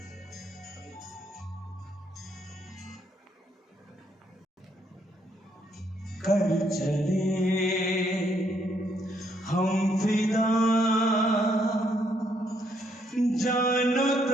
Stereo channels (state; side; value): normal; both; correlation 0.72